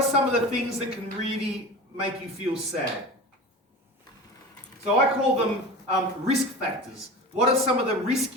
some of the things that can really make you feel sad? So I call them risk factors. What are some of the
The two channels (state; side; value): normal; both; correlation 0.32